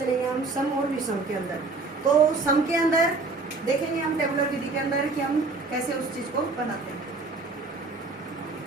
लेंगे हम, सम और विषम के अंदर। तो सम के अंदर देखेंगे हम टेबुलर विधि के अंदर कि हम कैसे उस चीज को बनाते हैं।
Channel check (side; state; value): left; quieter; 3.7 dB